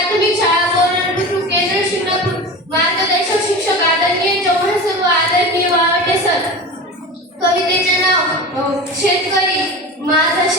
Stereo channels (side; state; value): both; normal; correlation 0.30